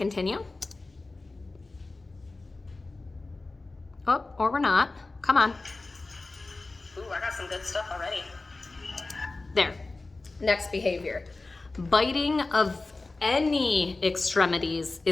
Oh, or we're not. Come on. Ooh, I got some good stuff already. There. Next behavior. Biting of any extremities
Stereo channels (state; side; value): quieter; right; 3.4 dB